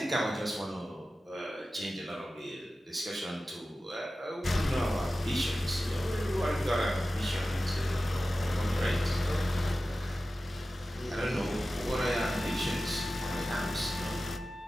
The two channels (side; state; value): both; normal; correlation 0.94